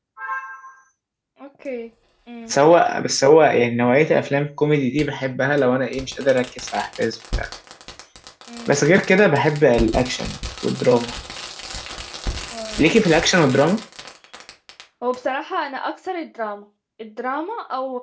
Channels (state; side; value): identical; both; correlation 1.00